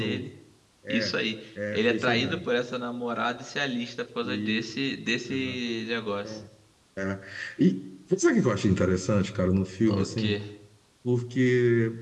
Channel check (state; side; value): identical; both; correlation 1.00